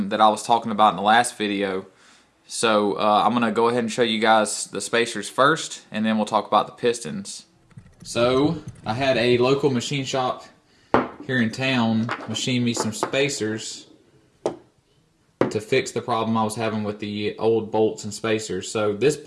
that I was talking about in the last video. So I'm going to go ahead and show you guys the spacers first, and then we'll talk about the pistons. So I had a local machine shop here in town machine me some spacers to fix the problem I was having with the old bolts and spacers. So this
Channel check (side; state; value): both; identical; correlation 1.00